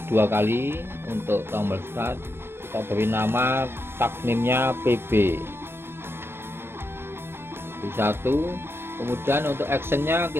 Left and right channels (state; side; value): late; left; 0.11 ms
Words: dua kali untuk tombol start, kita beri nama tag name-nya PB 1. Kemudian untuk actionnya